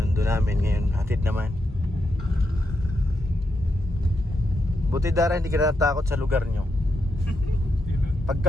namin, ngayon hatid naman. Buti Dara, hindi ka natakot sa lugar nyo. Pag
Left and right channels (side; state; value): both; normal; correlation 0.84